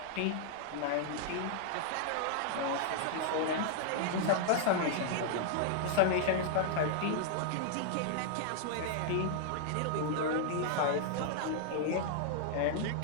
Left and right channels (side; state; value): both; different; correlation 0.00